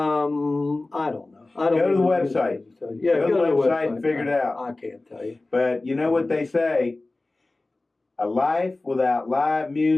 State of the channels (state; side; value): quieter; right; 3.1 dB